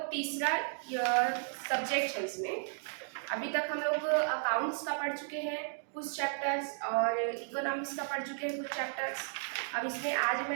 तीसरा सब्जेक्ट है। इसमें अभी तक हम लोग अकाउंट्स का पढ़ चुके हैं कुछ चैप्टर्स और इकोनॉमिक्स का पढ़ चुके हैं कुछ चैप्टर्स। अब इसमें आज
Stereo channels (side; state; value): left; silent; digital silence